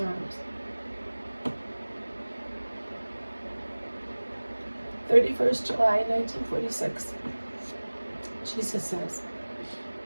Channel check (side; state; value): both; inverted; correlation -1.00